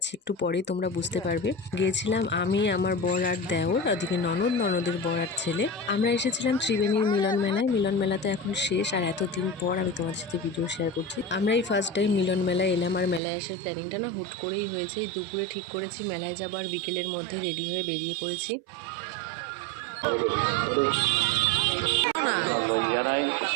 একটু পরে তোমরা বুঝতে পারবে। গিয়েছিলাম আমি, আমার বর আর দেওর, ওদিকে ননদের বর আর ছেলে। আমরা এসেছিলাম ত্রিবেণীর মিলন মেলায়। মিলন মেলা তো এখন শেষ, আর এতদিন পর আমি তোমাদের সাথে ভিডিও শেয়ার করছি। আমরা এই ফার্স্ট টাইম মিলন মেলায় এলাম, আর মেলায় আসার প্ল্যানিংটা না হুট করেই হয়েছে। এই দুপুরে ঠিক করেছি মেলায় যাবো, আর বিকেলের মধ্যে রেডি হয়ে বেরিয়ে পড়েছি।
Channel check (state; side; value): drops out; left; at 13.2 s